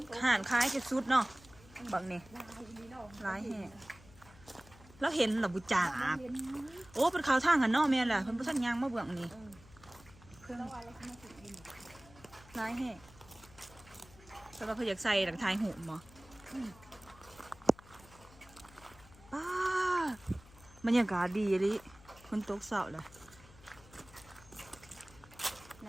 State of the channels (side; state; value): left; noise; hum, 22 dB below the sound